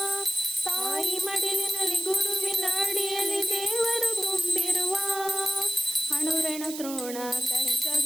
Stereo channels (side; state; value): right; noise; hiss, 9 dB below the sound